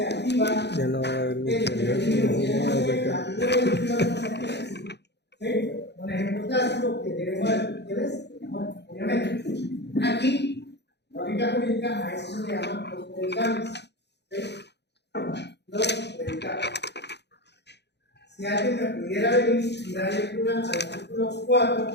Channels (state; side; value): late; right; 0.50 ms